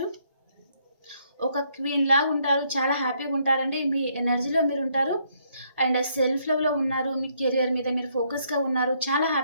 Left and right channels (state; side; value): inverted; both; correlation -0.71